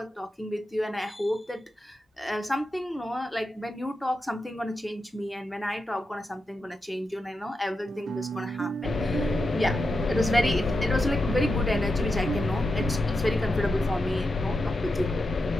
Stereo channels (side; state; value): both; normal; correlation 0.88